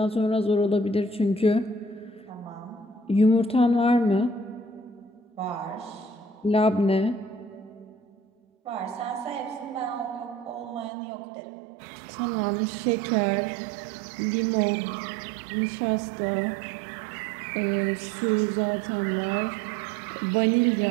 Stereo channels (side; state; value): left; drops out; at 10.9 s